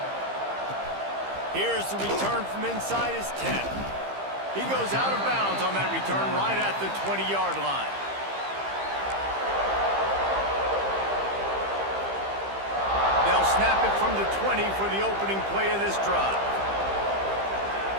Here's the return from inside his 10. He goes out of bounds on that return right at the 20-yard line. They'll snap it from the 20 for the opening play of this drive.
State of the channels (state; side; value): late; left; 15 ms